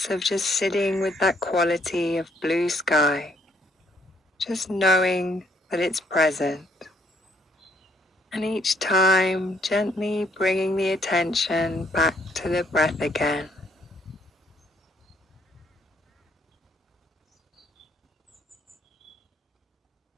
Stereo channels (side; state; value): both; normal; correlation 0.68